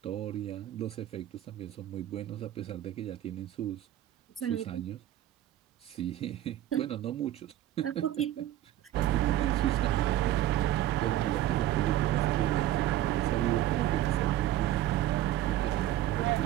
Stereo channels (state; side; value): quieter; left; 13.3 dB